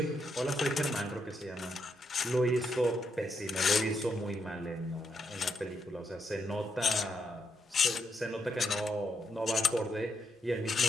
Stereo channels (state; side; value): normal; both; correlation 0.80